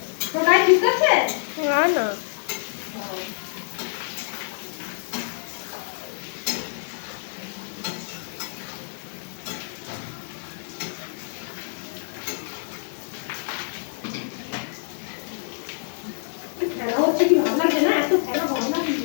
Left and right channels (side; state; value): right; silent; digital silence